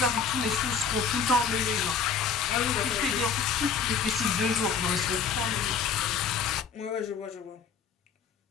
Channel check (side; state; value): right; quieter; 6.2 dB